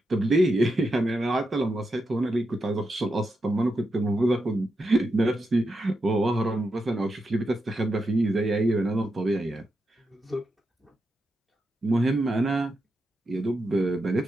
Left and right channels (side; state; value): both; normal; correlation 0.86